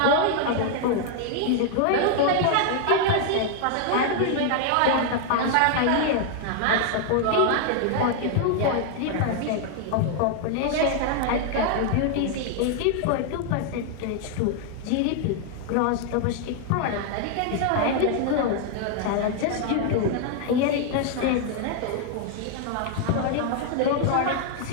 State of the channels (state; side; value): different; both; correlation 0.00